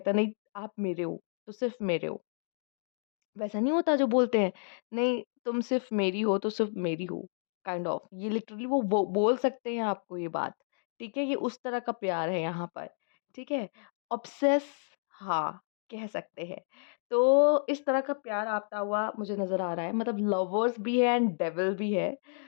नहीं आप मेरे हो, तो सिर्फ़ मेरे हो। वैसा नहीं होता जो बोलते हैं, नहीं तुम सिर्फ़ मेरी हो तो सिर्फ़ मेरी हो, काइंड ऑफ ये लिटरली वो बोल सकते हैं आपको ये बात, ठीक है? ये उस तरह का प्यार है यहाँ पर, ठीक है? ऑब्सेस हाँ, कह सकते हैं। तो इस तरह का प्यार आता हुआ मुझे नज़र आ रहा है, मतलब लवर्स भी है एंड डेविल भी है।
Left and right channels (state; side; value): silent; right; digital silence